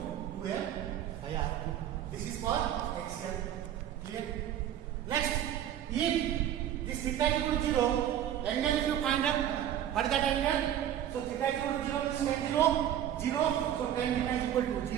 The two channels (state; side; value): quieter; left; 10.8 dB